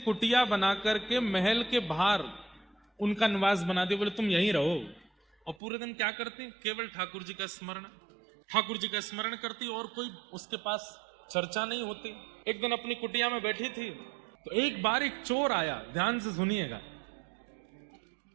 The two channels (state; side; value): drops out; left; at 5.6 s